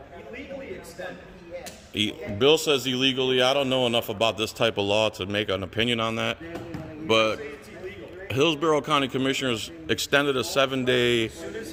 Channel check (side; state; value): both; identical; correlation 1.00